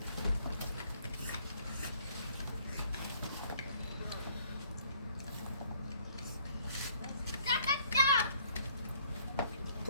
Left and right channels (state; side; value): inverted; both; correlation -0.62